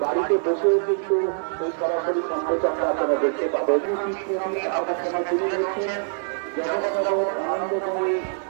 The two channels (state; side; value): silent; left; digital silence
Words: বাড়িতে বসেও কিন্তু এই সরাসরি সম্প্রচারটা আপনারা দেখতে পাবেন। জগৎনগর আনন্দময়ী